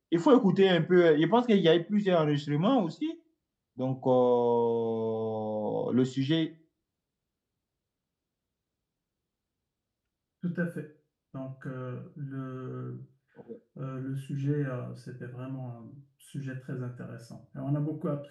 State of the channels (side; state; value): both; identical; correlation 1.00